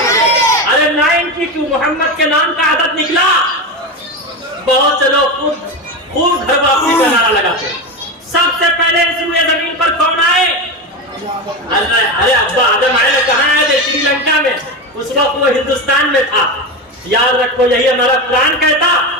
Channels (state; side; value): normal; both; correlation 0.18